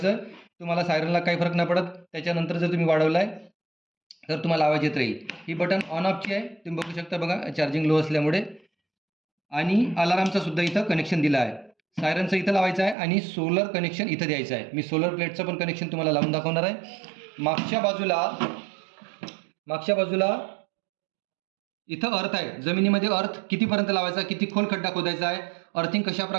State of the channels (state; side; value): drops out; left; at 13.0 s